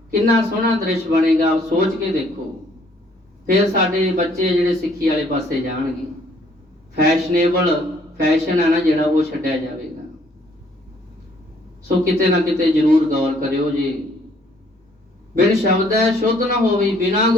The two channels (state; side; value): normal; both; correlation 0.63